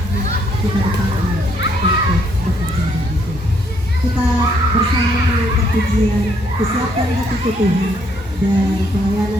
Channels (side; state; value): both; normal; correlation 0.70